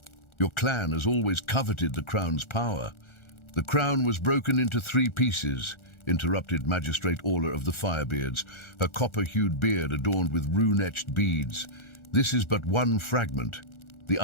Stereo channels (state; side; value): late; right; 1.4 ms